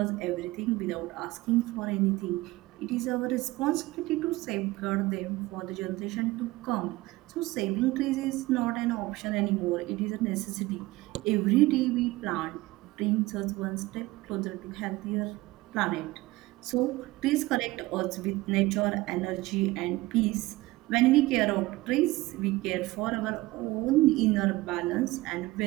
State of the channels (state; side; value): quieter; left; 19.5 dB